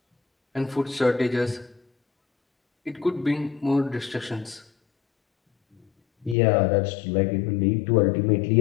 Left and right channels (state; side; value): drops out; right; at 6.4 s